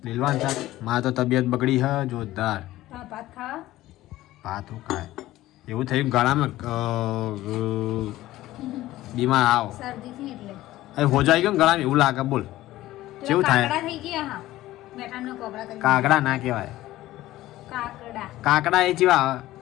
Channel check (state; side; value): quieter; right; 15.9 dB